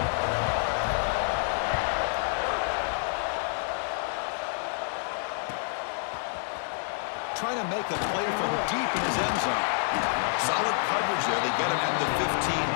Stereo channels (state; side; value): silent; right; 59 dB below the other